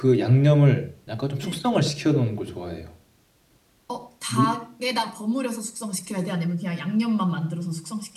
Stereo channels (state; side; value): identical; both; correlation 1.00